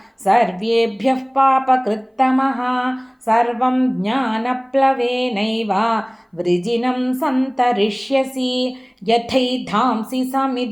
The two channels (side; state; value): both; identical; correlation 1.00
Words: सर्वेभ्यः पापकृत्तमः सर्वं ज्ञानप्लवेनैव वृजिनं सन्तरिष्यसि यथैधांसि